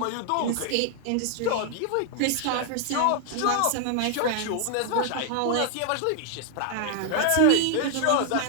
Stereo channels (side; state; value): both; different; correlation 0.00